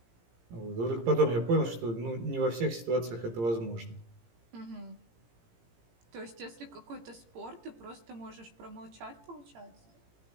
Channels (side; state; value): left; late; 17 ms